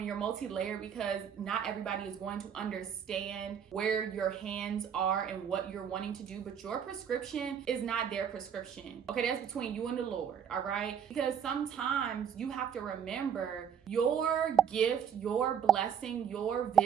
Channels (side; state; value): left; quieter; 8.0 dB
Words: you're multi-layered because not everybody is going to understand understand where your hands are and what you're wanting to do, but your prescription is not their prescription. Okay, that's between you and the Lord, all right? Because sometimes you have to remember your gift, your blessing, your